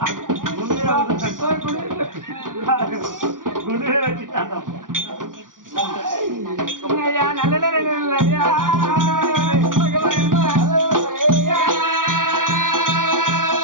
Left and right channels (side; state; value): left; late; 0.89 ms